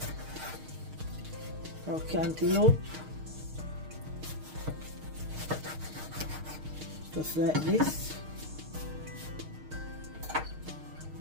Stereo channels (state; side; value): late; left; 6.5 ms